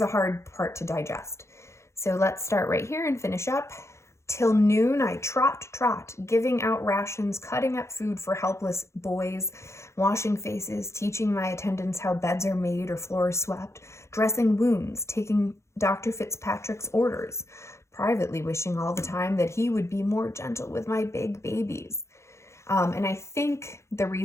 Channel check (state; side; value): late; right; 0.14 ms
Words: a hard part to digest. So let's start right here and finish up. Till noon I trot, giving out rations, cutting up food for helpless boys, washing faces, teaching my attendants how beds are made or floors swept, dressing wounds, taking Dr. Fitzpatrick's orders, privately wishing all the time that he would be more gentle with my big babies. And I think the